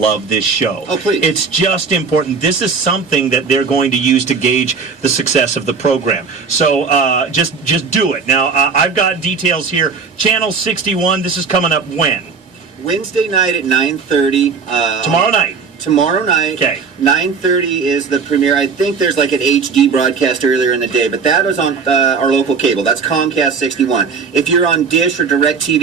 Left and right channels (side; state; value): left; quieter; 5.3 dB